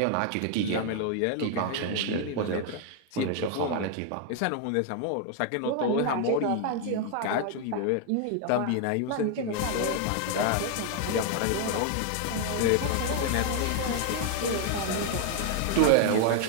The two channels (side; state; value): both; different; correlation 0.00